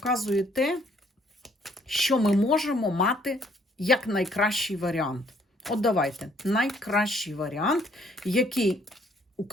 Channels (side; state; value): both; normal; correlation 0.64